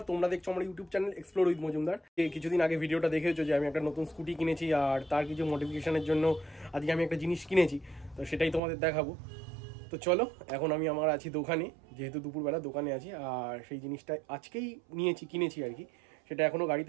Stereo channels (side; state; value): left; drops out; at 8.6 s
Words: তোমরা দেখছো আমার YouTube channel explore with Majumdar. কিছুদিন আগে ভিডিওটা দেখেছো যে আমি একটা নতুন স্কুটি কিনেছি, আর তার কিছু মডিফিকেশনের জন্য আজকে আমি একটা জিনিস কিনেছি, তো সেটাই তোমাদের দেখাবো। তো চলো, এখন আমি আমার আছি দোকানে, যেহেতু দুপুরবেলা দোকানে আছি, আর সেই জিনিসটা আজকেই কিনেছি আর কি। সেটা এখনও